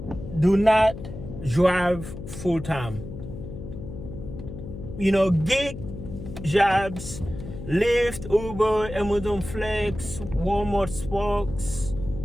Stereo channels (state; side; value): noise; left; hum, 10 dB below the sound